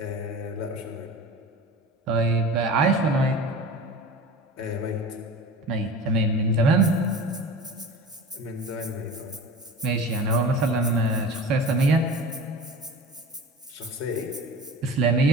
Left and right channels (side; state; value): both; normal; correlation 0.35